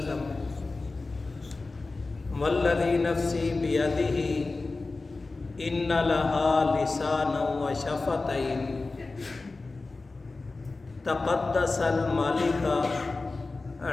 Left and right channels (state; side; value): quieter; right; 3.6 dB